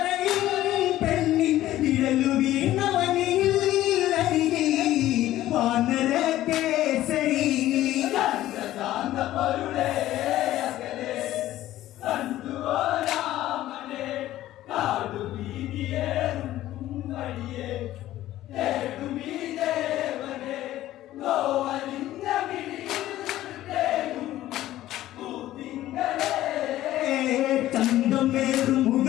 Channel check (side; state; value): right; quieter; 14.4 dB